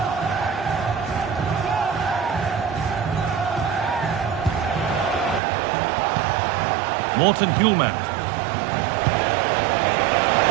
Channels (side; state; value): left; drops out; at 5.4 s